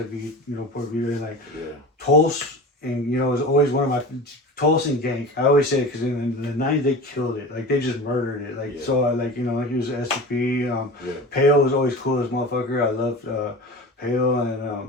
Port Vita, and like Tulse, and it was always one of my Tulse and Gank. I always say it because in the 90s they killed it, like they just murdered it, like so I like he was SCP. Pale was always cool as motherfucker. I loved Pale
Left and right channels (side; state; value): both; normal; correlation 0.33